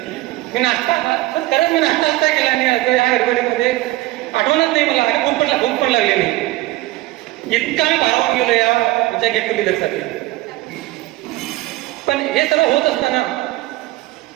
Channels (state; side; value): quieter; left; 17.8 dB